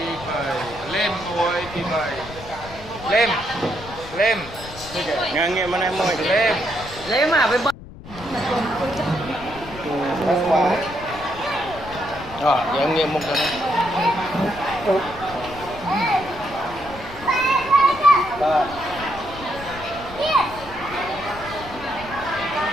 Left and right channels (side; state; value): left; noise; rumble, 16 dB below the sound